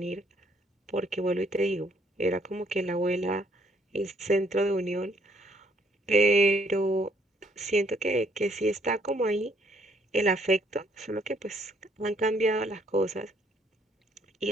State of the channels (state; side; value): normal; both; correlation 0.66